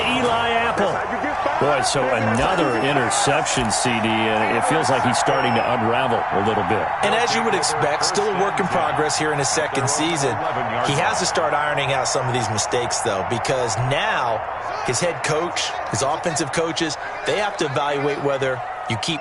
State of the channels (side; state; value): both; identical; correlation 1.00